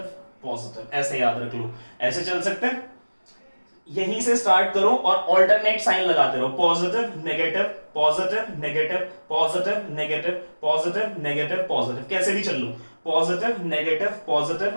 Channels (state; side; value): inverted; both; correlation -1.00